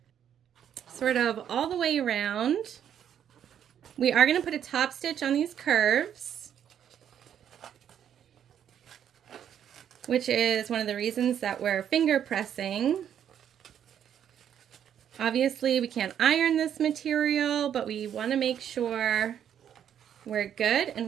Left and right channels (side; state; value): left; quieter; 9.4 dB